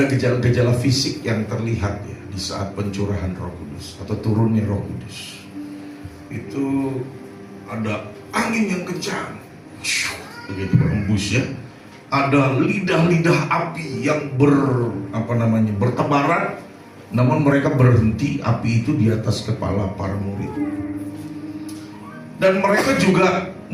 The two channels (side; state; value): both; identical; correlation 1.00